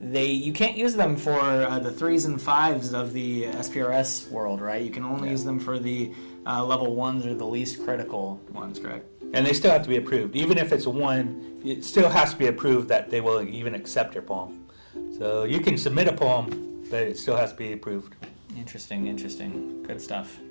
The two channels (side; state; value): both; inverted; correlation -1.00